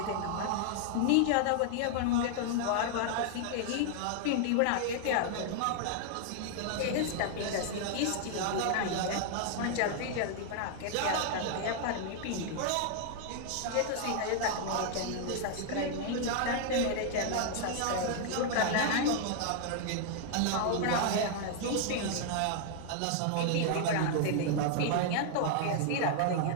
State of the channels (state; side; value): different; both; correlation 0.00